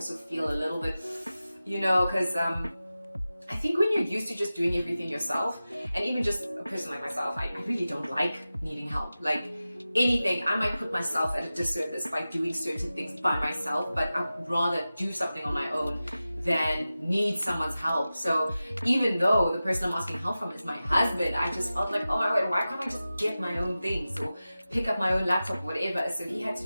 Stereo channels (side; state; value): both; inverted; correlation -0.95